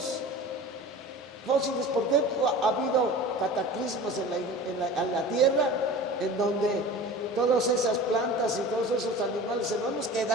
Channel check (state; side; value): normal; both; correlation 0.37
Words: fósiles, porque ha habido cataclismos en la Tierra en donde todas esas plantas y todos esos animales enormes